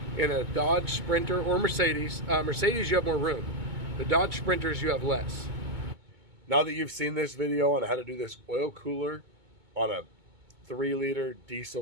in a Dodge Sprinter or Mercedes. Mercedes, you have more room. The Dodge Sprinters, you have less. Now that you've seen this video on how to do this oil cooler on a 3-liter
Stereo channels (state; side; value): late; left; 2.2 ms